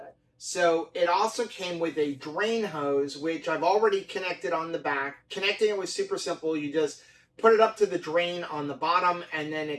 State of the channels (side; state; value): both; identical; correlation 1.00